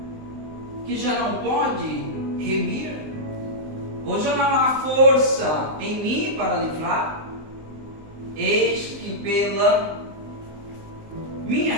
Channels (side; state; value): left; late; 19 ms